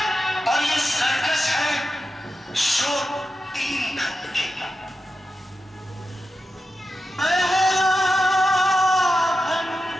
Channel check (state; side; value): normal; both; correlation 0.90